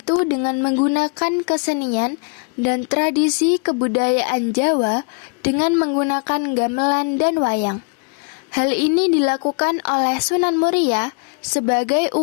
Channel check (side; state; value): right; quieter; 36.0 dB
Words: dengan menggunakan kesenian dan tradisi kebudayaan Jawa dengan menggunakan gamelan dan wayang. Hal ini dilakukan oleh Sunan Muria sebagai